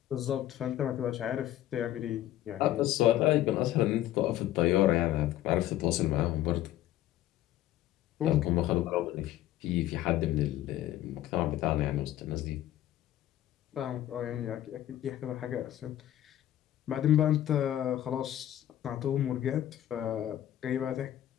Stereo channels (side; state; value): right; quieter; 13.0 dB